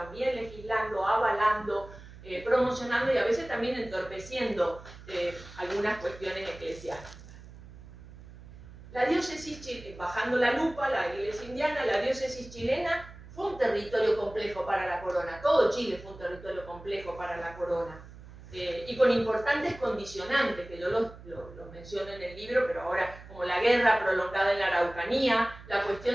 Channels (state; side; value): noise; right; hum, 17 dB below the sound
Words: legislando, avalando, promocionando y a veces también entorpeciendo algunas cuestiones eclesiásticas. La diócesis, bajando la lupa, la iglesia indiana, la diócesis chilena fue un territorio complejo para la corona, todo Chile fue un territorio complejo para la corona. Y con importantes condicionantes, que yo los menciono en el libro, pero ahora como la guerra prolongada en la Araucanía, la